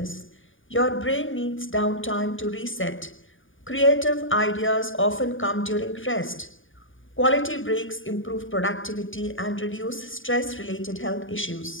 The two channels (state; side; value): late; right; 0.57 ms